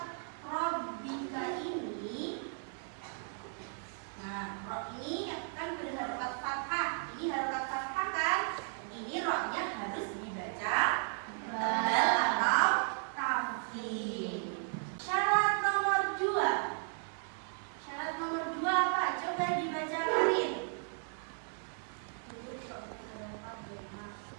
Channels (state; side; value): silent; left; 54 dB below the other